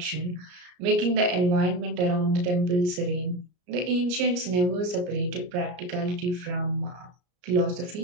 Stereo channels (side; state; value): left; late; 34 ms